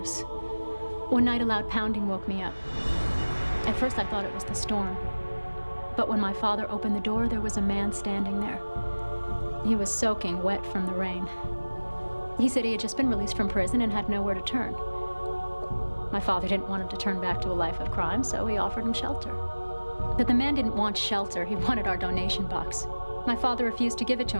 One night, a loud pounding woke me up. At first, I thought it was the storm. But when my father opened the door, there was a man standing there. He was soaking wet from the rain. He said he had just been released from prison and had nowhere to turn. My father didn't want him to turn back to a life of crime, so he offered him shelter. But the man didn't want shelter. He wanted our donation box. My father refused to give it to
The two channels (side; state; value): both; inverted; correlation -1.00